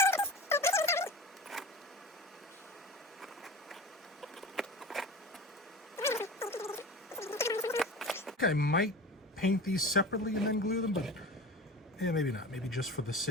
I might paint these separately and then glue them, but yeah, maybe not. Maybe just for the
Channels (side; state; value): both; normal; correlation 0.34